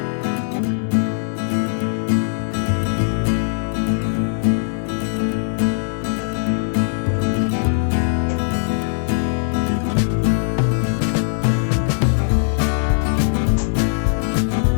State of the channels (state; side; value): silent; right; 66 dB below the other